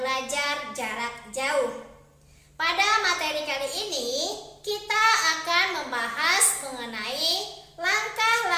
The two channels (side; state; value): both; identical; correlation 1.00